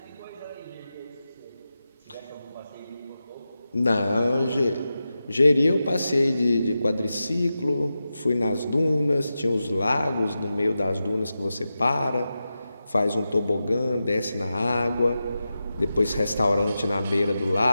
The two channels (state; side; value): inverted; both; correlation -0.92